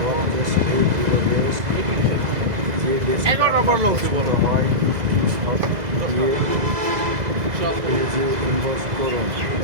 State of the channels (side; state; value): left; late; 2.0 ms